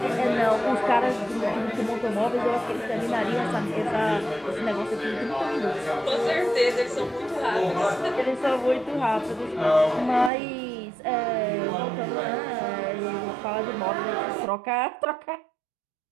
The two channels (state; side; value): drops out; left; at 10.3 s